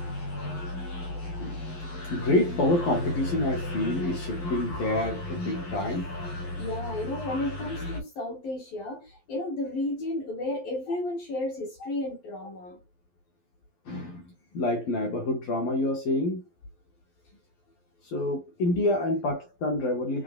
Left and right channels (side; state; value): right; late; 12 ms